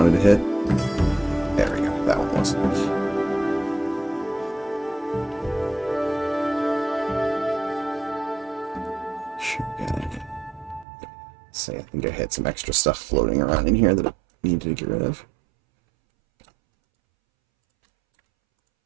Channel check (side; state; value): left; drops out; at 10.9 s